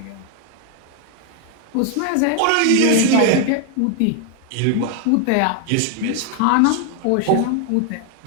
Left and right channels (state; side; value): different; both; correlation 0.01